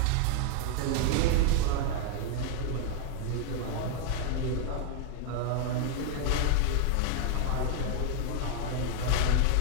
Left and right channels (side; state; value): both; different; correlation 0.00